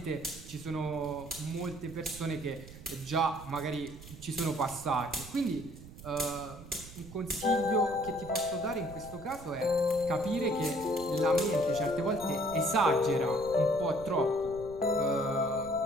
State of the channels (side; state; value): right; noise; rumble, 16 dB below the sound